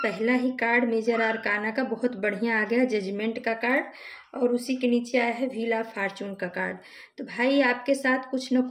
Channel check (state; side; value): identical; both; correlation 1.00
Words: ही कार्ड मेजर आर्काना का बहुत बढ़िया आ गया, जजमेंट का कार्ड, और उसी के नीचे आया है व्हील ऑफ फॉर्चून का कार्ड। तो भाई, आपके साथ कुछ न